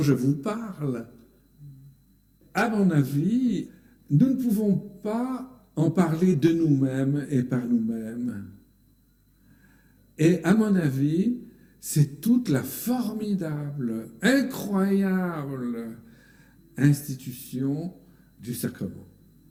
je vous parle. À mon avis, nous ne pouvons pas en parler de nous-mêmes et par nous-mêmes. Et à mon avis, c'est toute la formidable, incroyable institution du sacrement.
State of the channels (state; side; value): identical; both; correlation 1.00